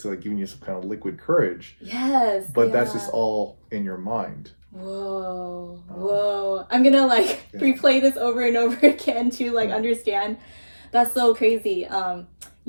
like giving you some kind of liquid courage. Yes. But that's just all in your mind. Whoa. I'm gonna replay this over and over again to understand. That's so crazy. I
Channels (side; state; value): both; inverted; correlation -1.00